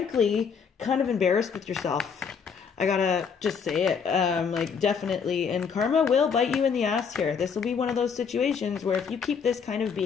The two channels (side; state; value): right; quieter; 6.4 dB